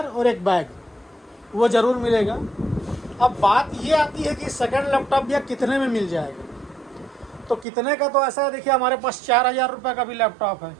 और एक बैग वो ज़रूर मिलेगा। अब बात ये आती है कि सेकंड लैपटॉप या कितने में मिल जाएगा, तो कितने का तो ऐसा है, देखिए हमारे पास 4,000 रुपये का भी लैपटॉप है।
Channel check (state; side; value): drops out; left; at 7.7 s